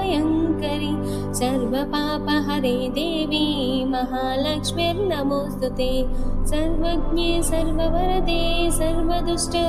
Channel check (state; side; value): identical; both; correlation 1.00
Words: सर्वपापहरे देवी महालक्ष्मीर्नमोऽस्तुते। सर्वज्ञे सर्ववरदे